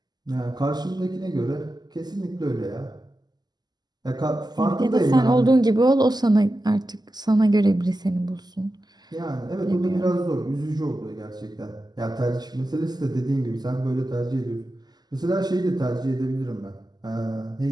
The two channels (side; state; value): left; late; 0.20 ms